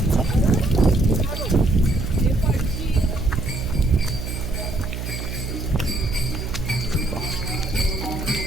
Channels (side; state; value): right; noise; hum, 6 dB below the sound